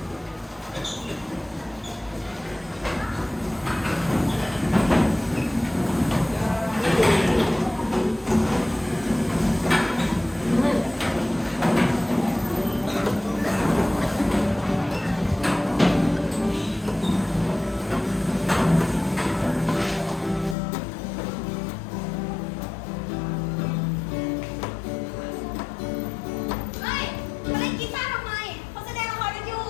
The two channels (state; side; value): drops out; right; at 20.6 s